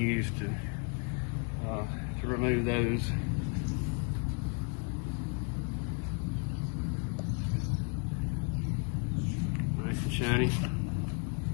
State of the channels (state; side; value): quieter; right; 37.3 dB